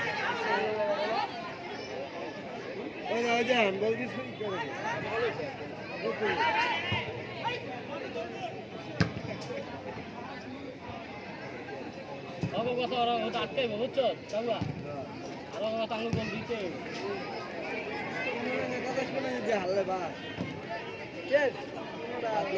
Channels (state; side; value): identical; both; correlation 1.00